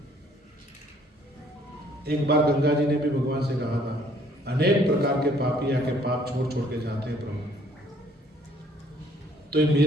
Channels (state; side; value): normal; both; correlation 0.61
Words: एक बार गंगा जी ने भी भगवान से कहा था, अनेक प्रकार के पापी आके पाप छोड़ छोड़ के जाते हैं प्रभु, तो ये